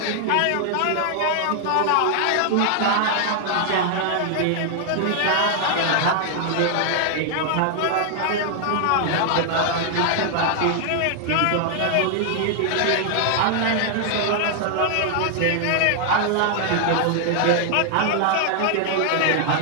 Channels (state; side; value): different; both; correlation 0.00